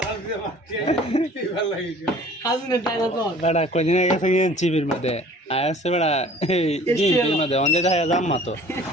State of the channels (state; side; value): normal; both; correlation 0.50